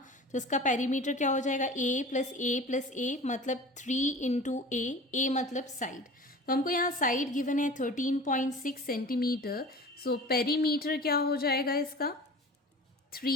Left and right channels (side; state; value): both; normal; correlation 0.38